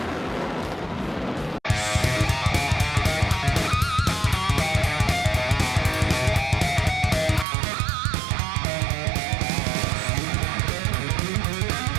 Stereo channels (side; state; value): left; drops out; at 7.5 s